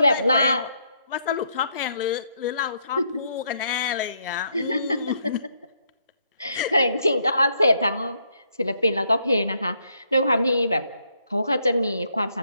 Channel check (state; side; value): inverted; both; correlation -0.74